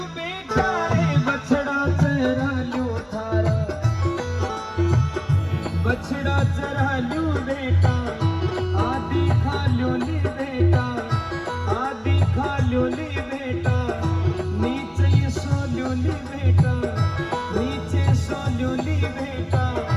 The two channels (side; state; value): both; identical; correlation 1.00